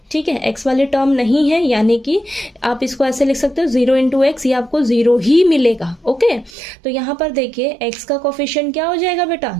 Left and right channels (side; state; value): left; drops out; at 6.5 s